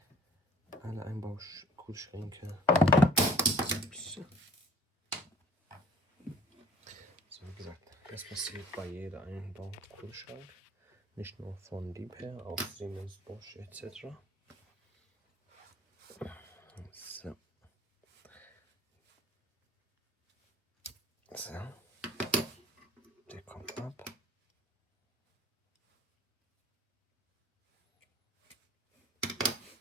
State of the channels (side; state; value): both; normal; correlation 0.50